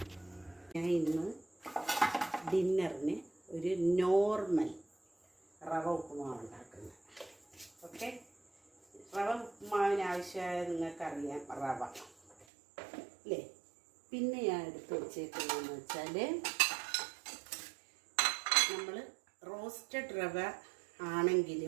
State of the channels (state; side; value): drops out; left; at 12.5 s